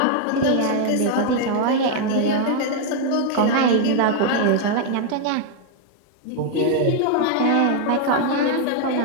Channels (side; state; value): both; different; correlation 0.00